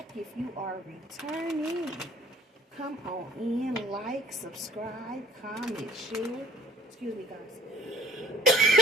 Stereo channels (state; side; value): normal; both; correlation 0.55